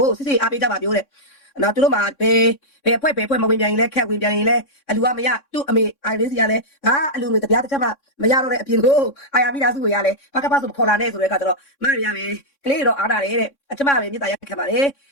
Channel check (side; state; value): right; late; 3.6 ms